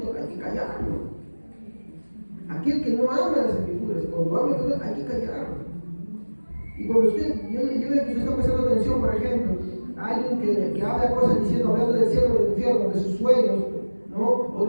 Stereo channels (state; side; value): inverted; both; correlation -1.00